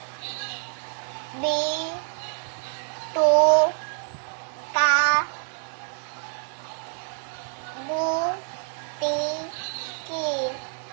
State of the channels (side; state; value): left; silent; 57 dB below the other